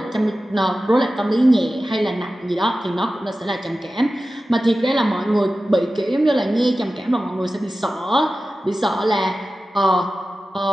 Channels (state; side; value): normal; both; correlation 0.95